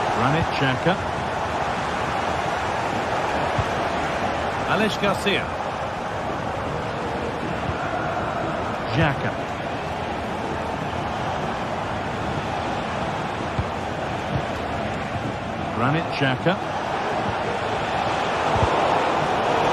Granit Xhaka. Alex Garcia. Xhaka. Granit Xhaka.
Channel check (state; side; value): identical; both; correlation 1.00